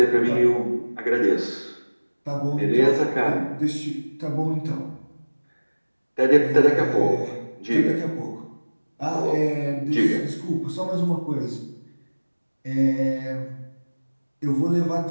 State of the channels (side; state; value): both; inverted; correlation -1.00